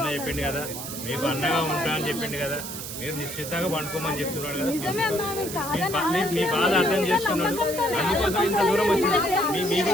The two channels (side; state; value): right; noise; hiss, 8 dB below the sound